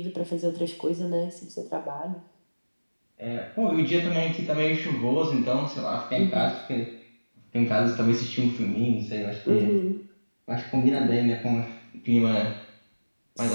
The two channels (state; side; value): inverted; both; correlation -1.00